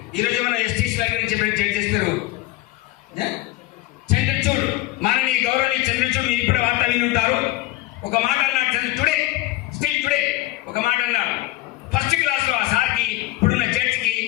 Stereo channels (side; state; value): right; quieter; 17.7 dB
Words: ఈరోజు మనం ఎస్టీసీ వారి గురించి చెప్పిన జడ్జెస్ పేరు చంద్రచూడ్, మాననీయ గౌరవనీయ చంద్రచూడ్. మీరు ఇప్పుడు వార్త విని ఉంటారు. ఒక మాట అన్నాడు స్టిల్ టుడే ఒక మాట అన్నాడు. ఫస్ట్ క్లాస్లో ఆ సార్కి, ఇప్పుడున్న జడ్జికి